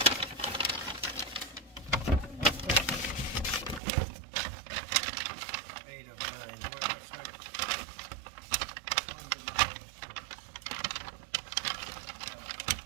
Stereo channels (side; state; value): left; drops out; at 3.8 s